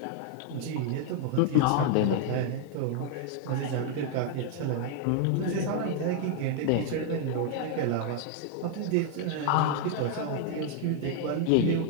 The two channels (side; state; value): both; different; correlation 0.00